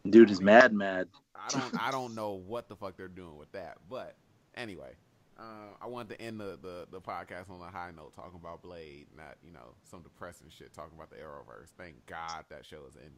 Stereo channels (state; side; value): identical; both; correlation 1.00